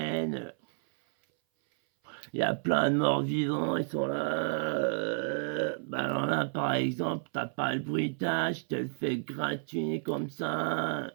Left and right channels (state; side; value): silent; left; 57 dB below the other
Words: il y a plein de morts vivants, ils sont là. Bah alors là, par exemple, t'as pas le bruitage, je te le fais gratuit comme ça.